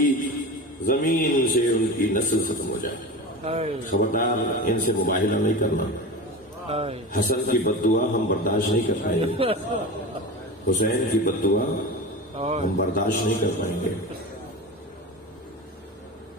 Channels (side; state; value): both; normal; correlation 0.28